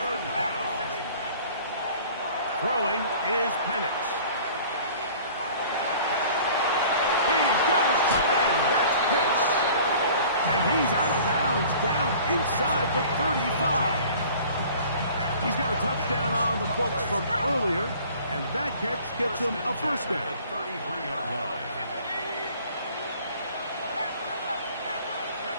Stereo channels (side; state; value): both; inverted; correlation -0.48